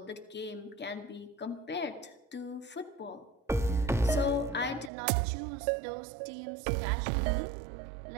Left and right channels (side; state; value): left; drops out; at 4.9 s